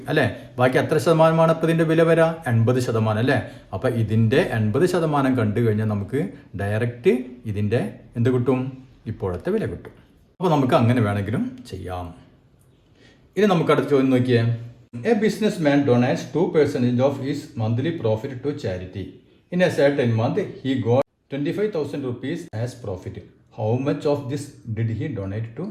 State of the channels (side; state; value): both; identical; correlation 1.00